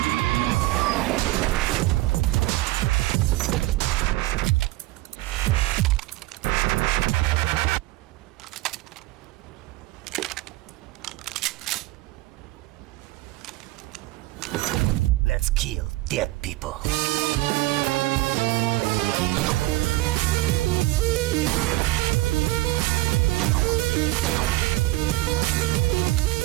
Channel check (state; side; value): quieter; left; 18.9 dB